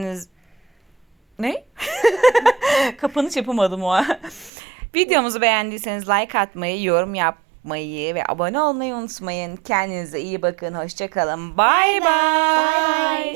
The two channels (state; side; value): drops out; left; at 4.5 s